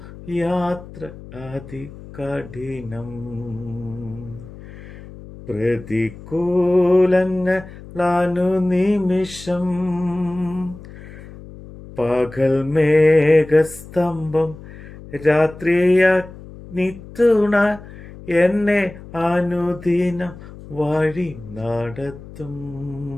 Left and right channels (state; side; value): noise; left; hum, 16 dB below the sound